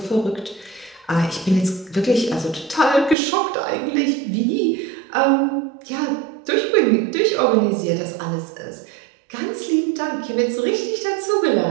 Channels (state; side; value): drops out; left; at 3.2 s